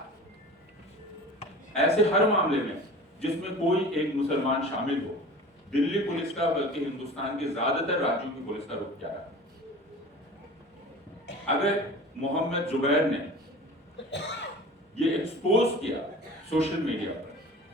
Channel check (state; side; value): normal; both; correlation 0.39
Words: ऐसे हर मामले में जिसमें कोई एक मुसलमान शामिल हो, दिल्ली पुलिस का बल्कि हिंदुस्तान के ज्यादातर राज्यों की पुलिस का रुख क्या रहा। अगर मोहम्मद जुबैर ने ये एक्सपोज किया सोशल मीडिया पर